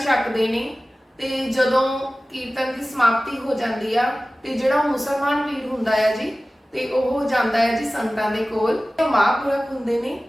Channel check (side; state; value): both; normal; correlation 0.97